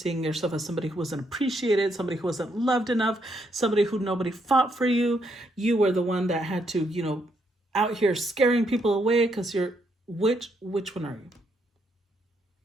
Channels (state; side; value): normal; both; correlation 0.75